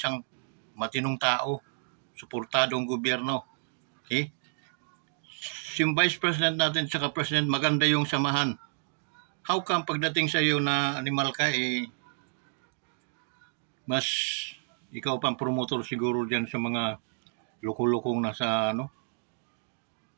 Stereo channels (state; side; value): silent; left; digital silence